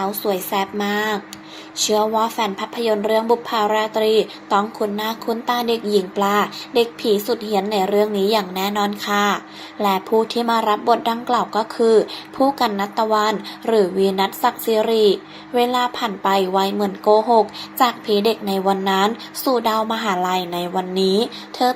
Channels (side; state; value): both; identical; correlation 1.00